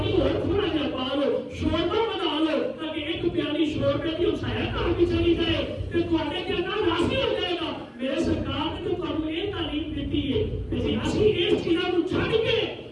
اور تھوڑا جہا پا لو, شوربہ بنا لو تاکہ ایک پیالی شوربے کی سایہ کار بھی چلی جائے تو تھوڑے کے اندر راضی ہو جائے گا. میرے سرکار نے تو تمہیں یہ تعلیم دیتی ہے کہ اسی اس چیزوں کو چھڑ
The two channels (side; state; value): both; identical; correlation 1.00